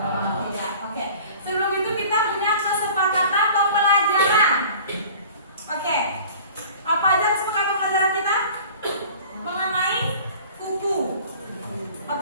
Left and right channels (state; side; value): inverted; both; correlation -0.45